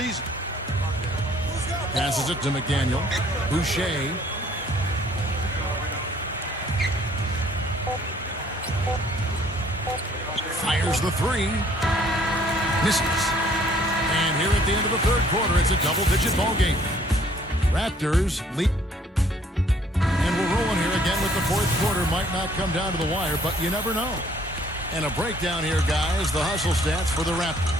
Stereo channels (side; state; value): both; normal; correlation 0.61